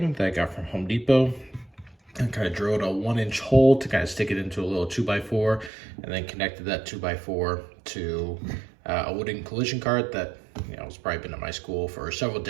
that I got from Home Depot, and kind of drilled a 1-inch hole to kind of stick it into a little 2x4, and then connected that 2x4 to a wooden collision cart that has probably been at my school for several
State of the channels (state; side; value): drops out; left; at 5.7 s